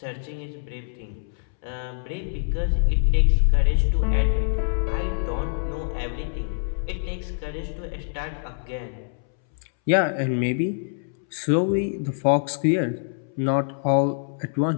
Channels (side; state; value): right; silent; 62 dB below the other